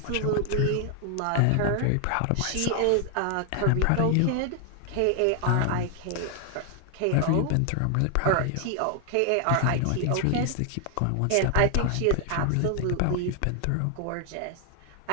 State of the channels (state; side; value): different; both; correlation 0.00